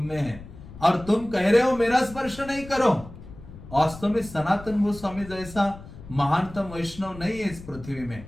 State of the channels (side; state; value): left; noise; rumble, 16 dB below the sound